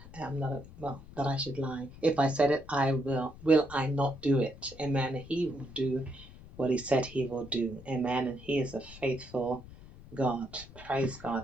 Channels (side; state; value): left; noise; rumble, 18 dB below the sound